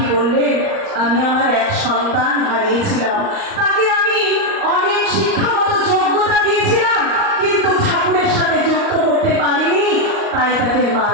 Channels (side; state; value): left; late; 38 ms